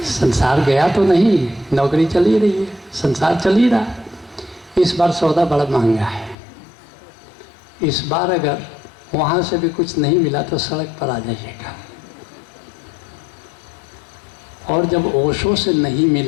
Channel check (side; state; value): right; drops out; at 6.4 s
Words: संसार गया तो नहीं, नौकरी चल ही रही है, संसार चल ही रहा है। इस बार सौदा बड़ा महंगा है। इस बार अगर वहाँ से भी कुछ नहीं मिला तो सड़क पर आ जाइएगा। और जब ओशो से नहीं